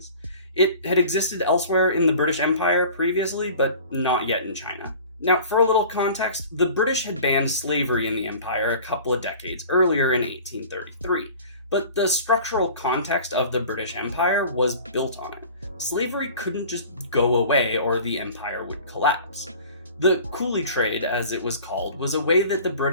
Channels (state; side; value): inverted; both; correlation -0.43